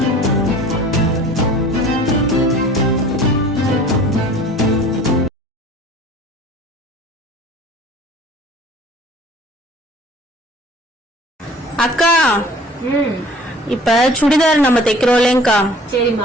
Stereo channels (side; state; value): both; normal; correlation 0.46